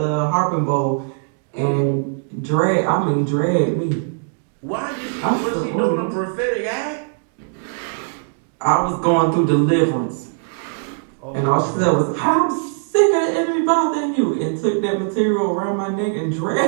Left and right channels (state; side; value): silent; left; digital silence